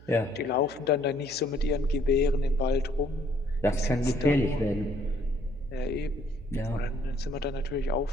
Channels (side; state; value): right; noise; hum, 21 dB below the sound